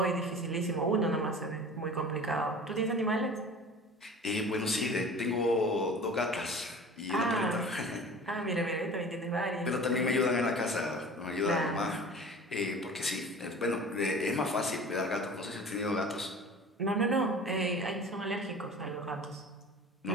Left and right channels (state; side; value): normal; both; correlation 0.40